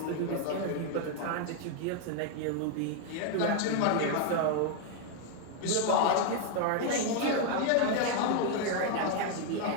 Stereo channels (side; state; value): both; different; correlation 0.00